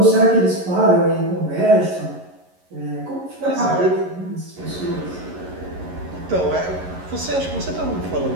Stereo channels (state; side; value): late; left; 11 ms